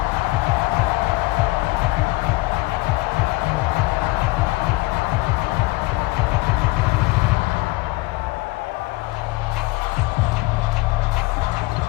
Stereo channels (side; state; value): right; quieter; 21.5 dB